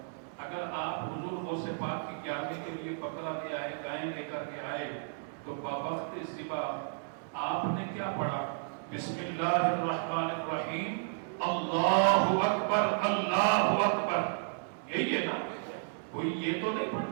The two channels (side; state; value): left; silent; digital silence